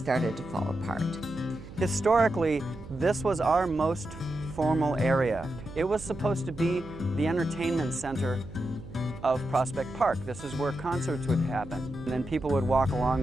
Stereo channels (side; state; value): right; noise; hum, 15 dB below the sound